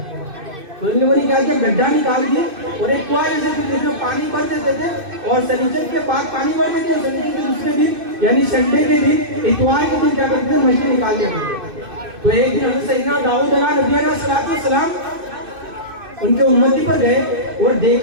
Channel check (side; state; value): left; late; 2.6 ms